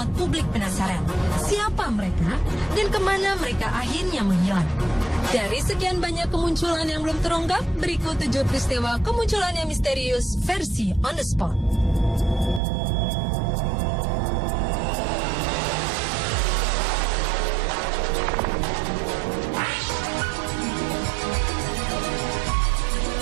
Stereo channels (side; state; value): left; drops out; at 12.6 s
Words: publik penasaran. Siapa mereka dan kemana mereka akhirnya menghilang? Dari sekian banyak kemunculan yang belum terungkap, berikut 7 peristiwa kemunculan yang misterius versi on the spot.